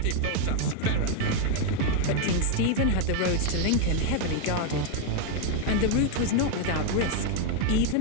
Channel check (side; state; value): both; different; correlation 0.01